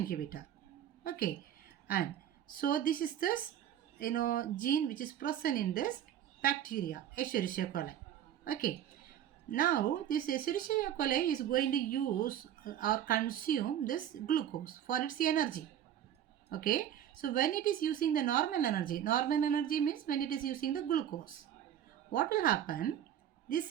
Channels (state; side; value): quieter; left; 10.4 dB